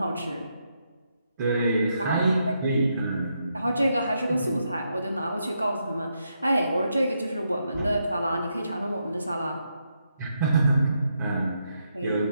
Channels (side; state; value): both; inverted; correlation -0.81